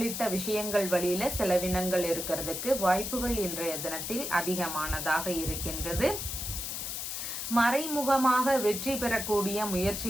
விஷயங்கள் வழியில செலவினங்கள் இருக்கிறதுக்கு வாய்ப்புகள் இன்றைய தினத்தில் அதிகமானதாக இருக்கின்றது. மறைமுகமாக வெற்றி பெறக்கூடிய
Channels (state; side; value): noise; left; hiss, 4 dB below the sound